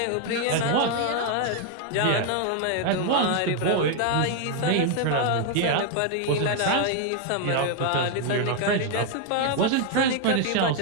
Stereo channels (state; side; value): different; both; correlation 0.00